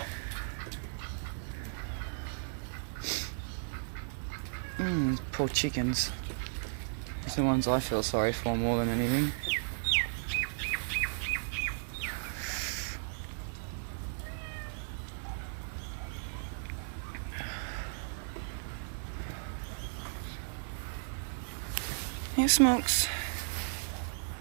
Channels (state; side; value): silent; left; digital silence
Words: Poor chickens. It's the ones I feel sorry for more than anything. Here, Smokes.